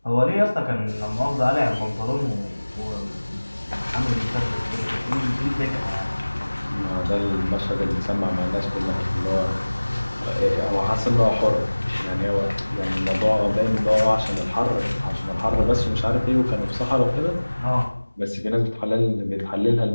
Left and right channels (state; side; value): inverted; both; correlation -1.00